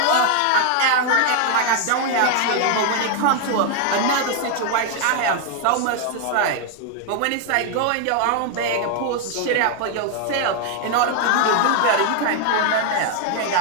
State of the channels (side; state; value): both; different; correlation 0.00